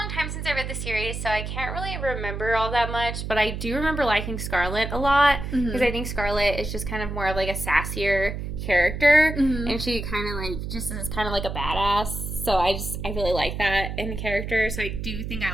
long time since I read the series, so I can't really remember all that much. But I do remember liking Scarlet a lot because I think Scarlet is just kind of more of like a sassier character, and she kind of like just is kind of like a badass. So I really like that in the character. So I do think I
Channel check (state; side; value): noise; right; hum, 5 dB below the sound